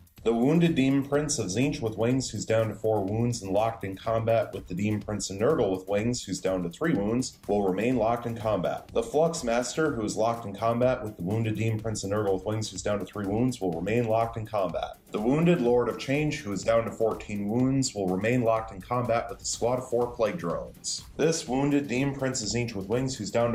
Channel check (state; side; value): identical; both; correlation 1.00